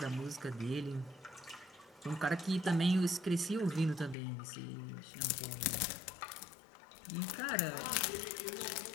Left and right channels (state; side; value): drops out; right; at 4.2 s